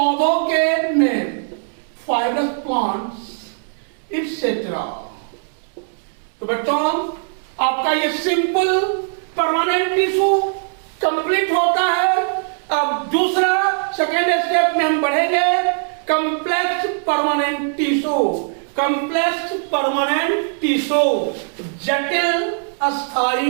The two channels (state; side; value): silent; left; digital silence